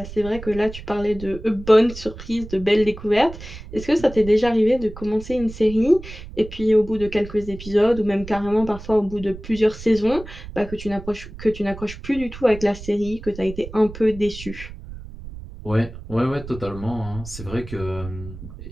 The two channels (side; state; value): right; noise; rumble, 13 dB below the sound